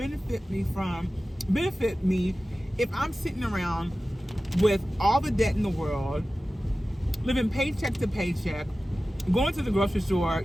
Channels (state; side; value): normal; both; correlation 0.95